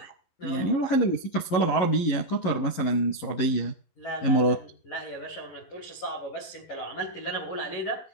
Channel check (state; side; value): late; right; 11 ms